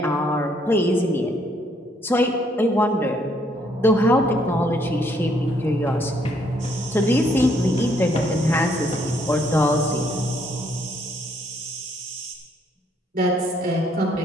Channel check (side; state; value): both; normal; correlation 0.69